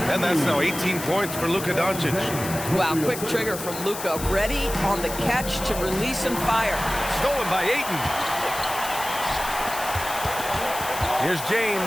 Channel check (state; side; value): noise; left; hiss, 9 dB below the sound